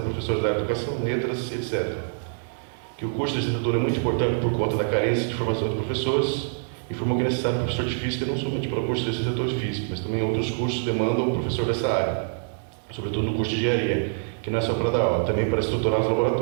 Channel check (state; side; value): silent; left; digital silence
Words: professores da área de educação, letras, etc. Que o curso de licenciatura é muito importante por conta da carência de formação de professores. Informou que é necessário um professor de física não somente para o curso de licenciatura de física, mas também outros cursos demandam um professor dessa área, sobretudo no curso de engenharia, que não é só para dar aula, também para estruturar os